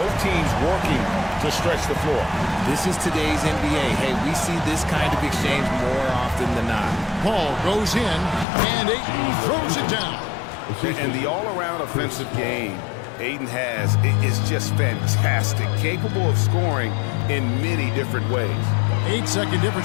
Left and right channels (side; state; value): right; drops out; at 8.5 s